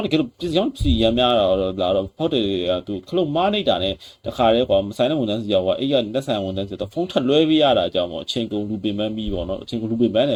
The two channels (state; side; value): identical; both; correlation 1.00